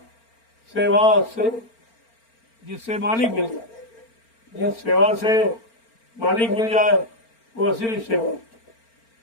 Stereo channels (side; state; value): right; late; 4.4 ms